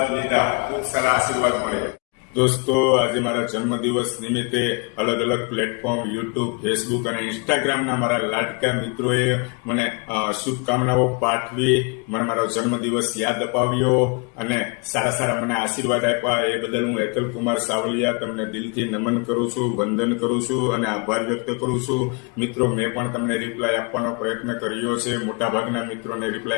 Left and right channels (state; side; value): quieter; right; 30.7 dB